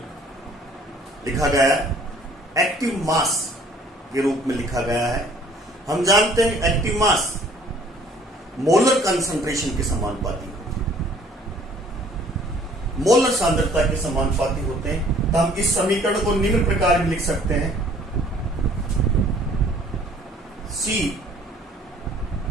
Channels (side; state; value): both; normal; correlation 0.56